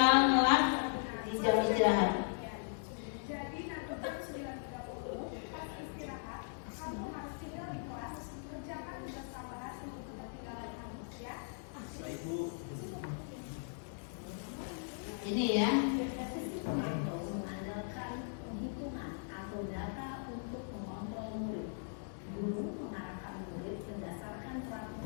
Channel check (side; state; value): right; silent; digital silence